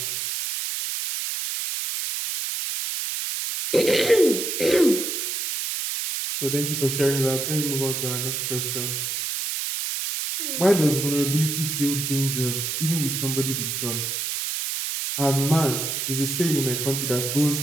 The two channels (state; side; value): noise; right; hiss, 2 dB below the sound